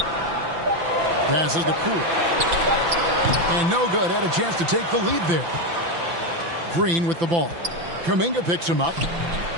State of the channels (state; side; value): late; left; 5.9 ms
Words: Passes to Poole. And no good. Had a chance to take the lead there. Green with the ball. Kuminga picks him up.